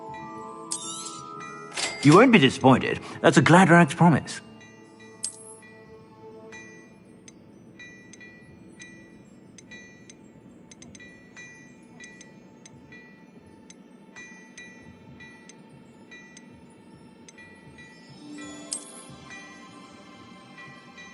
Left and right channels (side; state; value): both; identical; correlation 1.00